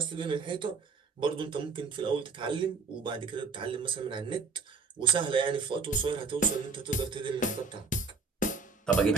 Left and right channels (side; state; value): left; quieter; 4.6 dB